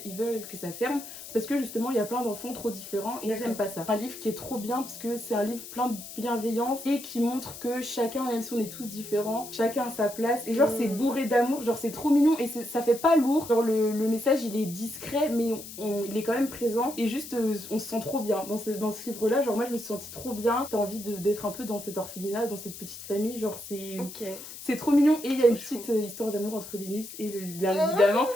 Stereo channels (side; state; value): left; noise; hiss, 13 dB below the sound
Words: ils veulent que ça ferme parce que justement il y a plein d'enfants trop différents et ils D'accord. n'aiment pas ça. Un livre qui est trop bien parce que c'est un livre plein de bienveillance et qui montre que chacun, même si on est tous différents, chacun a sa place et genre c'est bourré d'amour, genre c'est trop mignon et ça fait pas lourd. Genre le message il est discret mais il est quand même présent et juste on se sent trop bien dans ce livre-là. Genre moi je me suis sentie trop bien, t'as envie d'être un peu dans cet orphelinat, dans cette petite famille, genre Ok. c'est trop mignon. Et il y a une Trop petite histoire d'amour entre Linus et bien évidemment